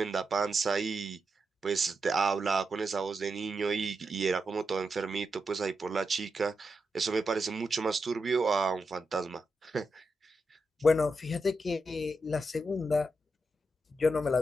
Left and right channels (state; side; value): normal; both; correlation 0.86